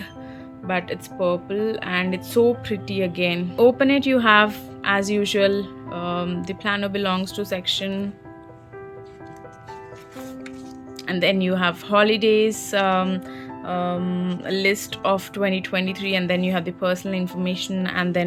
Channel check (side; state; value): both; identical; correlation 1.00